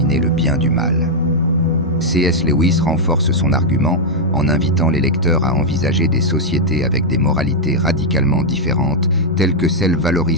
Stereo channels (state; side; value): normal; both; correlation -0.03